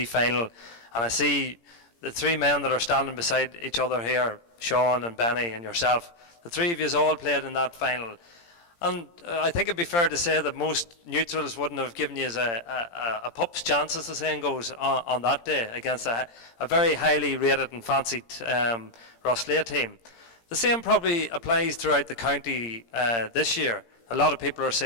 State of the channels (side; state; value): right; late; 17 ms